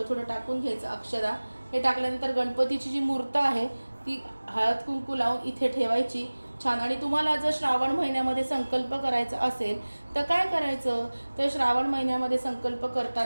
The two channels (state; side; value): inverted; both; correlation -1.00